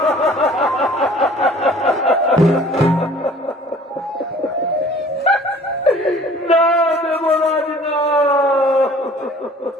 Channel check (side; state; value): both; normal; correlation 0.50